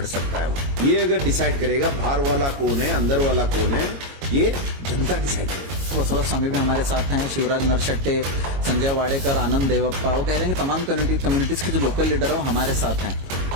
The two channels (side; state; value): left; late; 22 ms